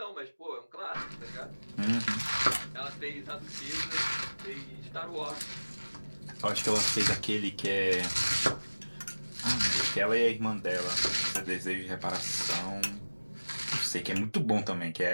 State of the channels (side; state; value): both; inverted; correlation -1.00